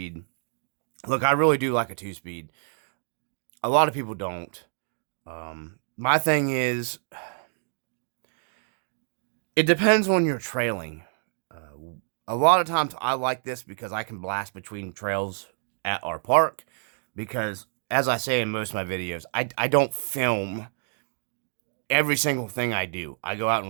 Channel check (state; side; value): silent; left; digital silence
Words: Look, I really do like a 2-speed. A lot of people don't. My thing is, it depends on your trailing. A lot of times I like this because I can blast between trails at our park, because as I say in most of my videos, I don't film every single thing I do. I go out